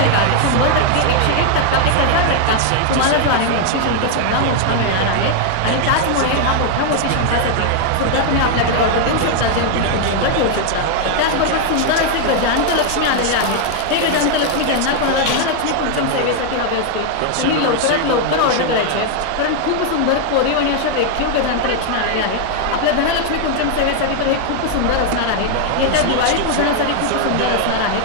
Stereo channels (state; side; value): different; both; correlation 0.00